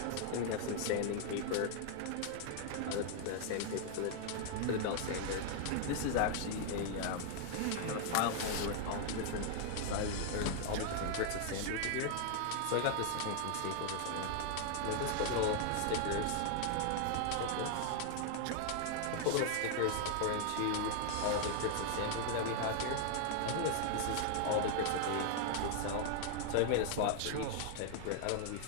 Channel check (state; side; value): different; both; correlation 0.00